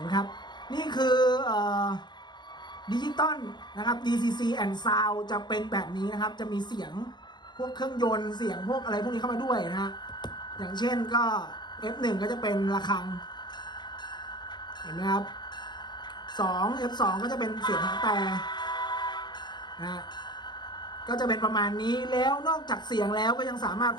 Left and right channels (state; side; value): late; right; 0.21 ms